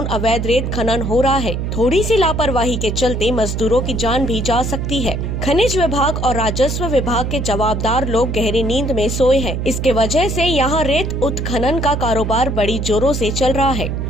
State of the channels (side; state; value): right; noise; hum, 2 dB below the sound